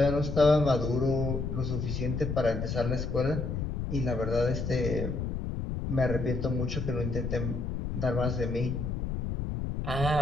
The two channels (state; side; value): noise; left; rumble, 3 dB below the sound